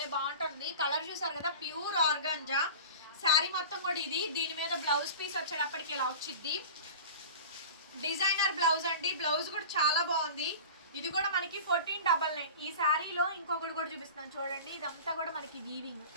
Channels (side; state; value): both; inverted; correlation -0.35